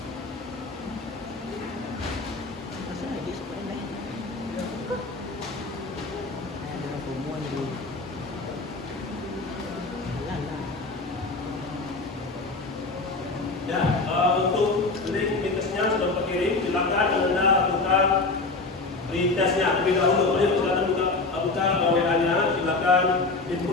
tesnya terlebih dahulu. Mari silakan buka WA-nya, silakan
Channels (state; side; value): quieter; right; 3.6 dB